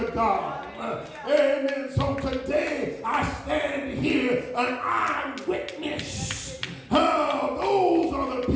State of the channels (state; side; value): identical; both; correlation 1.00